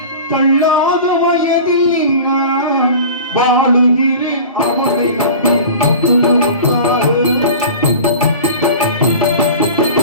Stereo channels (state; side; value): inverted; both; correlation -0.37